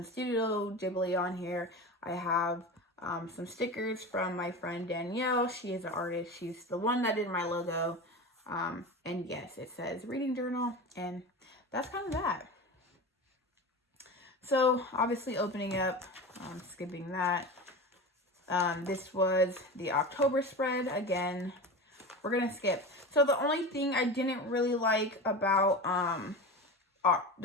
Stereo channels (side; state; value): both; normal; correlation 0.28